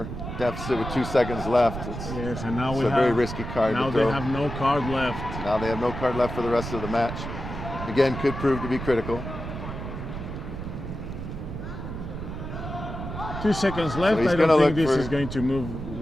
deficit with 2 seconds left, it's a very risky card to throw. Now they have no card left. Now they have no card left for the rest of the match. Again, could prove to be critical. 2 seconds left. So he's I don't think this for, is going to move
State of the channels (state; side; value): noise; right; rumble, 7 dB below the sound